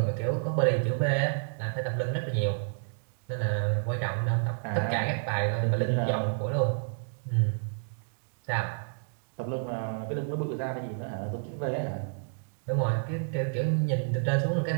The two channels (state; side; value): silent; left; digital silence